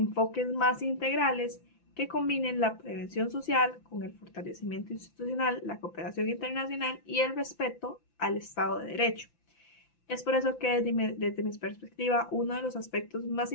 más integrales que combinen la prevención social con el fortalecimiento institucional, la cooperación internacional y el respeto al Estado de Derecho. Es por eso que desde mi perspectiva, uno de los aspectos más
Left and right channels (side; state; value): right; late; 5.9 ms